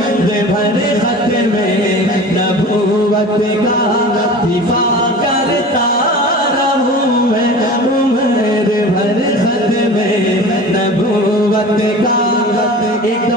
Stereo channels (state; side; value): normal; both; correlation 0.37